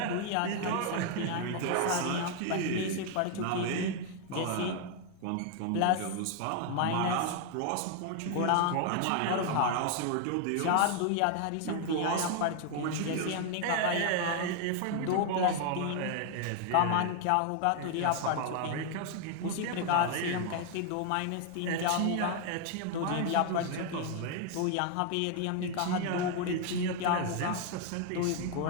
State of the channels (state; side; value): different; both; correlation 0.00